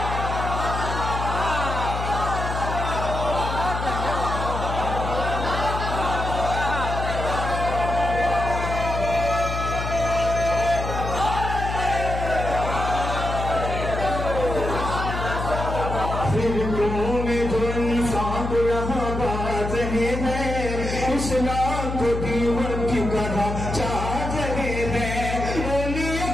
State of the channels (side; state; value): left; noise; hum, 4 dB below the sound